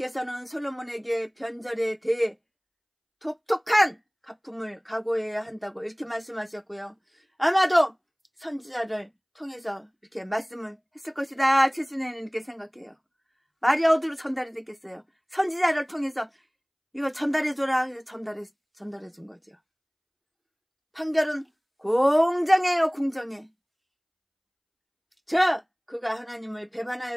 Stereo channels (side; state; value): both; identical; correlation 1.00